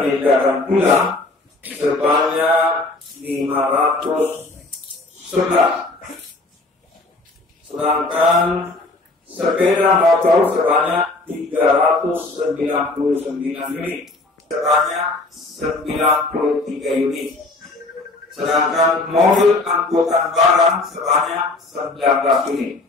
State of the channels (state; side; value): quieter; right; 3.1 dB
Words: pulang sebanyak 511, sedangkan sepeda motor sebanyak 399 unit sebanyak 93 unit, sedangkan mobil angkutan barang sebanyak 19 unit.